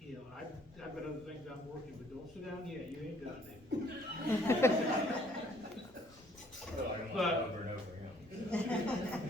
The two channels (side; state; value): left; noise; rumble, 28 dB below the sound